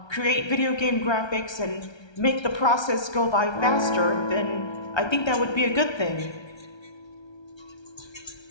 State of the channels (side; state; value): right; late; 1.3 ms